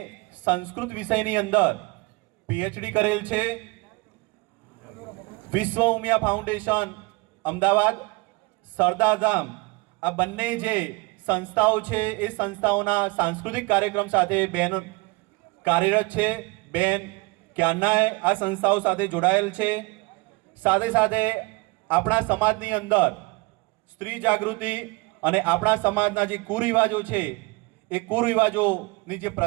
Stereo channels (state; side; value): quieter; left; 25.7 dB